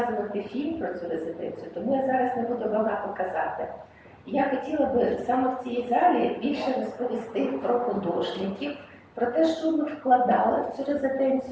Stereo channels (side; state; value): both; identical; correlation 1.00